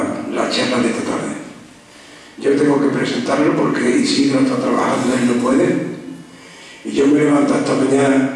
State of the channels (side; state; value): both; identical; correlation 1.00